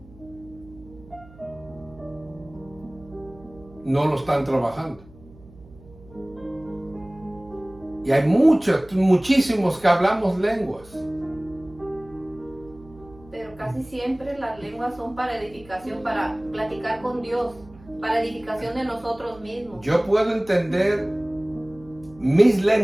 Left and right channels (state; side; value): noise; right; hum, 22 dB below the sound